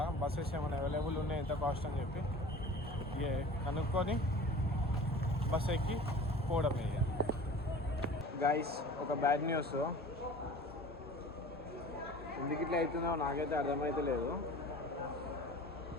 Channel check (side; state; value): both; normal; correlation 0.41